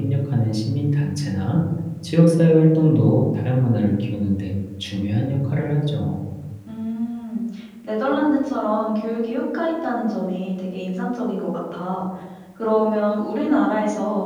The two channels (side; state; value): both; identical; correlation 1.00